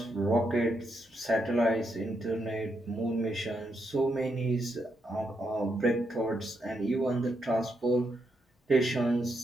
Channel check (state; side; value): normal; both; correlation 0.81